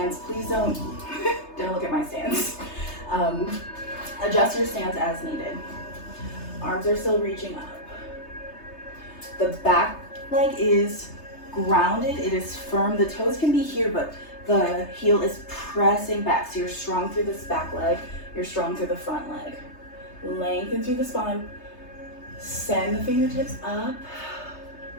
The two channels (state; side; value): late; right; 3.3 ms